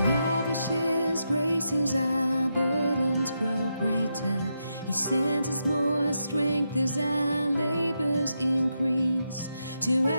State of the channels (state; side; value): inverted; both; correlation -0.84